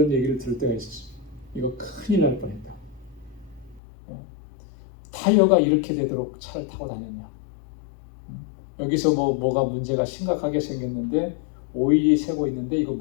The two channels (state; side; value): drops out; right; at 3.8 s